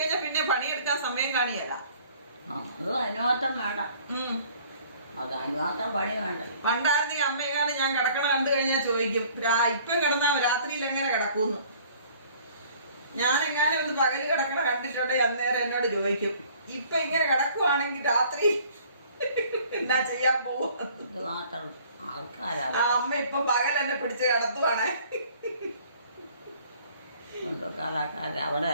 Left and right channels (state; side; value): inverted; both; correlation -0.55